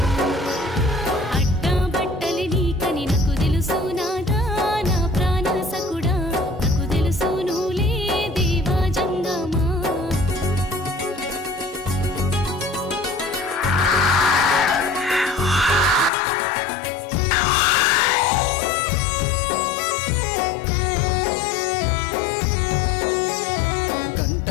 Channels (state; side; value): drops out; right; at 16.1 s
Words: అడ్డా బట్టలి నీకని నాకు తెలుసు నాదా నా ప్రాణసకుడా నాకు తెలుసు నువ్వులే దేవా జంగమా